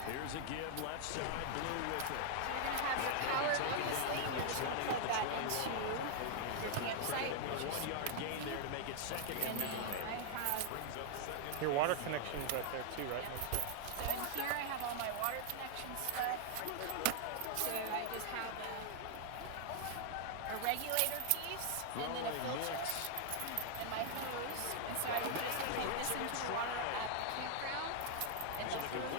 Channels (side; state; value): both; different; correlation 0.00